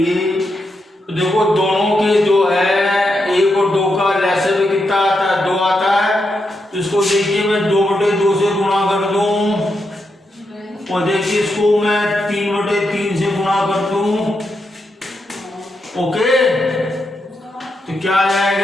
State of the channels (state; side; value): normal; both; correlation 0.84